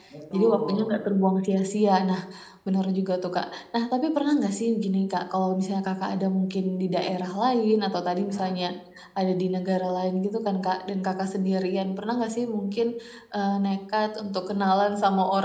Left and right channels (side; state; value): both; identical; correlation 1.00